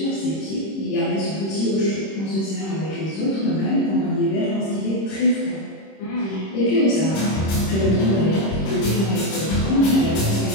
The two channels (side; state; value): right; late; 26 ms